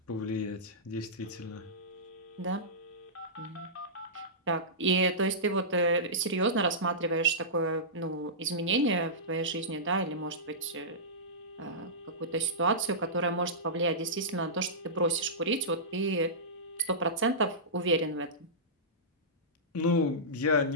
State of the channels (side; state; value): both; normal; correlation -0.17